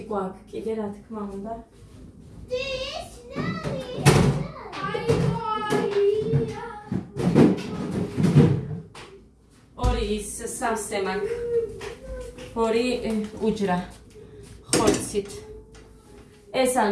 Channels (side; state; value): both; identical; correlation 1.00